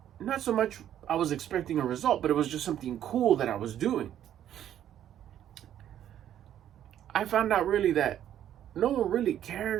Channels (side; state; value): left; quieter; 10.9 dB